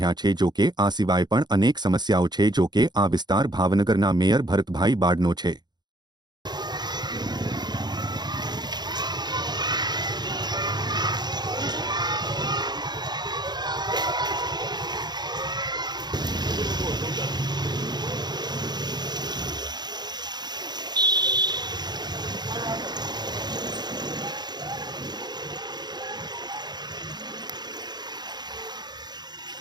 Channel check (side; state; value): left; late; 0.20 ms